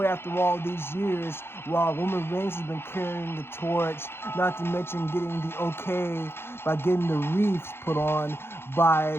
after all these years while Roman Reigns has been carrying the torch, not to mention getting the okay by getting the wreaths put on by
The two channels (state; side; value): late; right; 0.11 ms